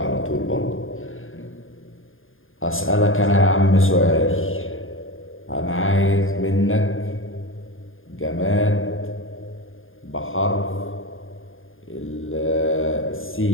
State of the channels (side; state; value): right; late; 0.59 ms